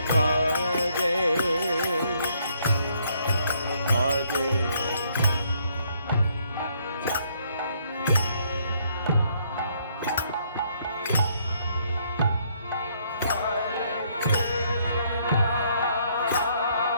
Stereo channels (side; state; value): both; inverted; correlation -0.69